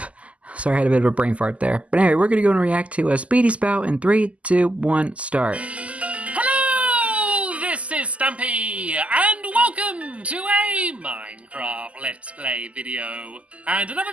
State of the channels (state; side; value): late; left; 0.066 ms